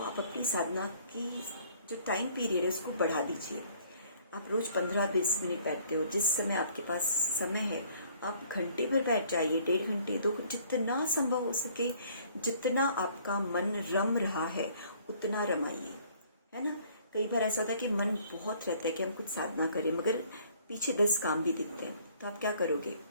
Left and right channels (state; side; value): inverted; both; correlation -0.58